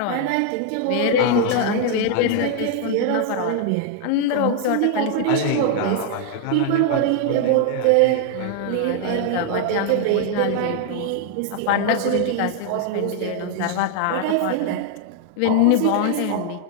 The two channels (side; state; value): both; different; correlation 0.00